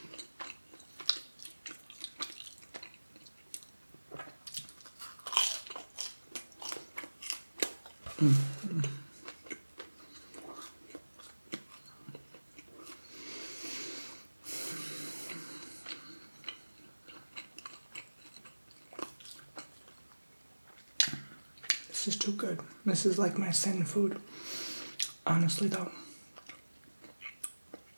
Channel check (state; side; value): inverted; both; correlation -1.00